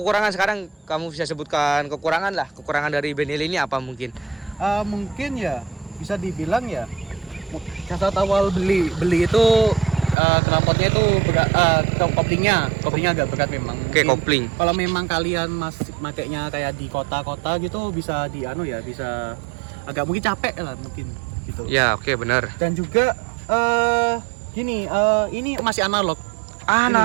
sekarang, kamu bisa sebutkan kekurangan dari Benelli ini apa mungkin? Mungkin ya bisa dibilang ya saat awal beli itu knalpotnya itu berat, koplingnya agak berat memang. Oke, kopling. Kalau memang kalian masih makainya kayak di kota-kota gitu bisa bisa agak mungkin capek lah mungkin gitu. Ya, oke, benar. Dan juga ini masih analog.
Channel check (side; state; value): left; drops out; at 10.2 s